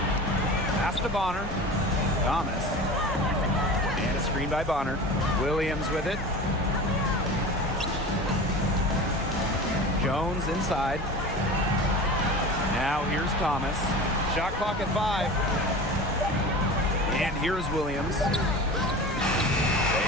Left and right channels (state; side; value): normal; both; correlation 0.34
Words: Pass to Bonner. Thomas. Screen by Bonner. Williams with it. Jones inside. Now here's Thomas. Shot clock at 5. And here's Williams. They